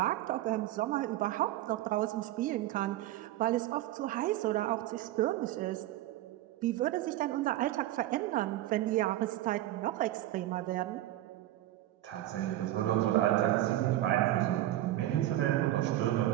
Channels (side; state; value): left; quieter; 14.7 dB